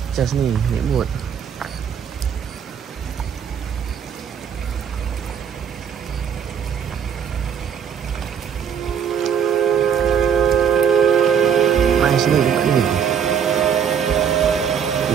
Just ni naik boat. Nice ni tempat ni.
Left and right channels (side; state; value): left; quieter; 7.8 dB